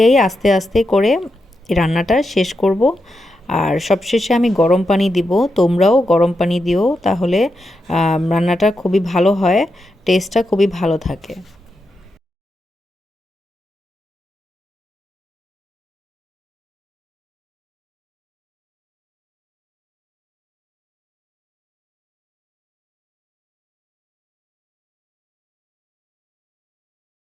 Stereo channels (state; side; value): normal; both; correlation 0.86